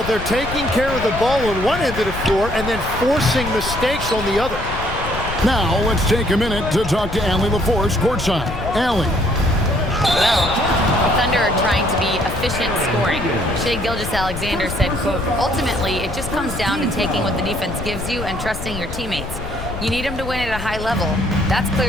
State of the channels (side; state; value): left; noise; rumble, 8 dB below the sound